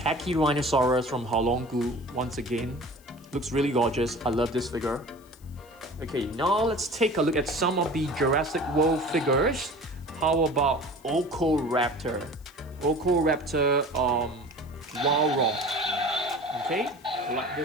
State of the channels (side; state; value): left; noise; hiss, 28 dB below the sound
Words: from Haolonggu. Once again, looks really gorgeous. I love this figure. Okay, now let's take a look at some of the Jurassic World figures. How about Ocoraptor? Ocoraptor, Walrus. Okay, I like